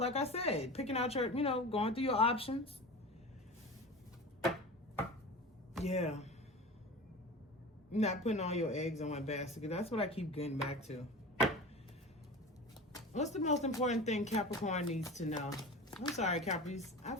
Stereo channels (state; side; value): normal; both; correlation 0.33